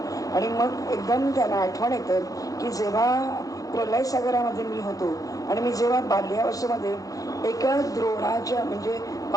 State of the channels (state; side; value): late; right; 0.17 ms